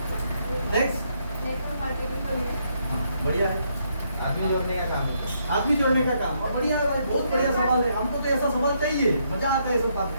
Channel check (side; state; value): both; inverted; correlation -0.75